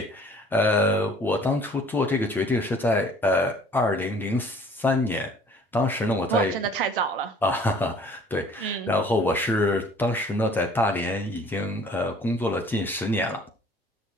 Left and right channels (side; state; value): both; normal; correlation 0.53